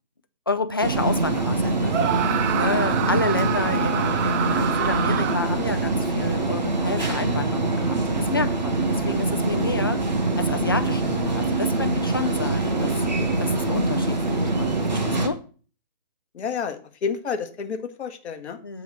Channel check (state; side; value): inverted; both; correlation -0.40